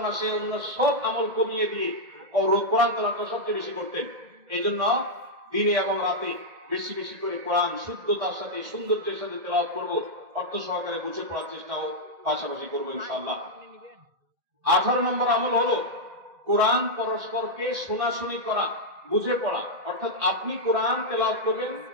মাসে অন্য সব আমল কমিয়ে দিয়ে কোরআন তেলাওয়াতটা সবচেয়ে বেশি করতেন। এইজন্য দিনে এবং রাতে বেশি বেশি করে কোরআন শুদ্ধতার সাথে, সৌন্দর্যের সাথে তেলাওয়াত করব, অর্থ সহকারে বুঝে পড়ার চেষ্টাও পাশাপাশি করবো ইনশাআল্লাহ। 18 নম্বর আমল হলো কোরআন পরস্পরকে শোনাশুনি করা, বুঝে পড়া। অর্থাৎ আপনি কোরআন তেলাওয়াত করবেন,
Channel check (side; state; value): left; late; 1.8 ms